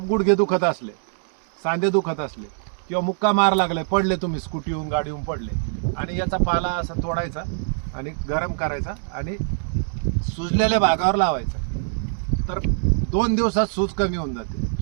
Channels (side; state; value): left; silent; 63 dB below the other